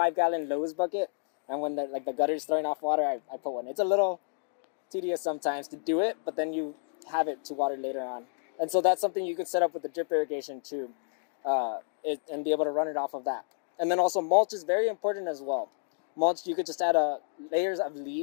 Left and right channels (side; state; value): right; silent; digital silence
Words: Lowe's bucket, and when the gutter's throwing off water, I put one. It's a little tedious sometimes to do it, but then you have it to water later on. And so that's something you could set up with the drip irrigation too. And be able to run it off of that. And then also mulch is very important as well. Mulch, you could just add layers of